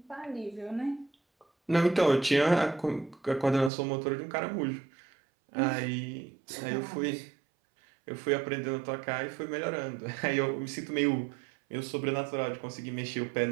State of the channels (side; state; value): left; drops out; at 3.7 s